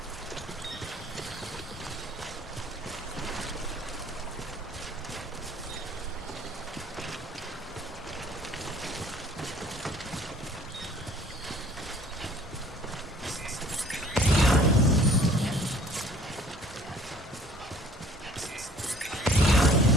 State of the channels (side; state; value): both; normal; correlation 0.54